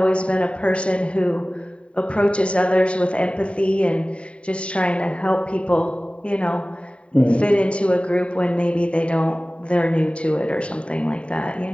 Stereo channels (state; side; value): late; right; 0.060 ms